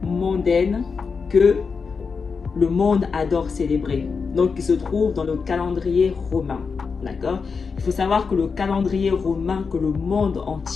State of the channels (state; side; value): quieter; right; 5.2 dB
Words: mondaines que le monde adore célébrer, donc qui se trouve dans le calendrier romain. D'accord? Il faut savoir que le calendrier romain que le monde